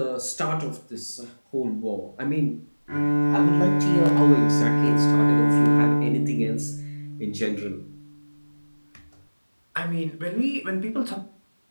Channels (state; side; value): inverted; both; correlation -1.00